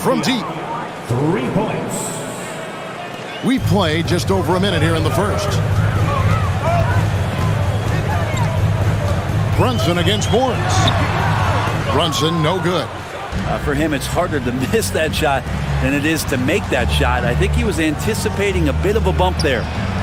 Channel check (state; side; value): identical; both; correlation 1.00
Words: deep. 3 points. We play just over a minute here in the first. Brunson against Morris. Brunson no good. For him, it's harder to miss that shot than it is to make that shot. I think he was anticipating a bit of a bump there.